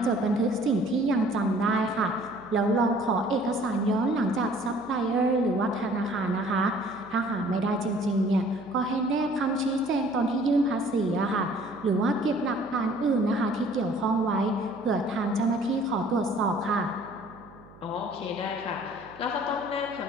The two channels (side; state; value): right; noise; hum, 23 dB below the sound